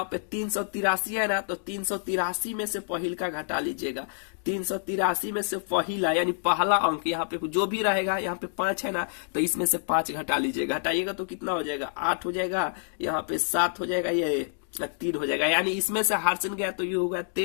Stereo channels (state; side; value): silent; right; digital silence